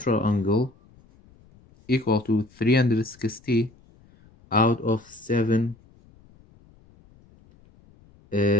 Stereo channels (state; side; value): noise; left; rumble, 29 dB below the sound